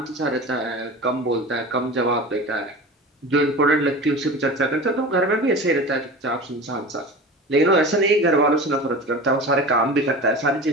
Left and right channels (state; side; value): normal; both; correlation 0.33